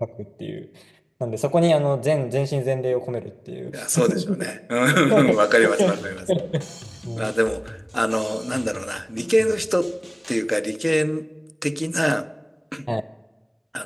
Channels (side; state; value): both; identical; correlation 1.00